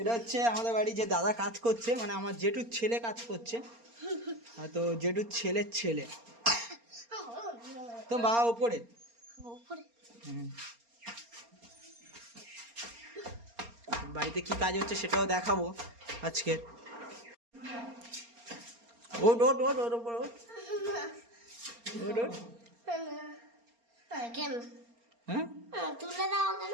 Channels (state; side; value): late; left; 4.3 ms